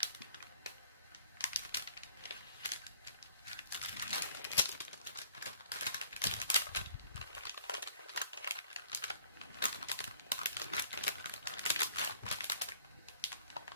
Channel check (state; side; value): inverted; both; correlation -0.54